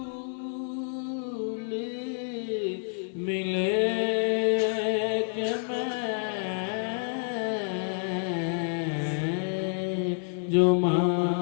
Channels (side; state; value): right; silent; digital silence